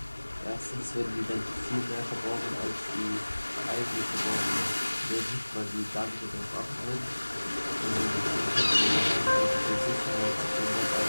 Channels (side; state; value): both; inverted; correlation -1.00